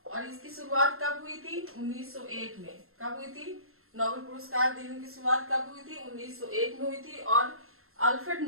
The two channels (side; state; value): left; late; 0.62 ms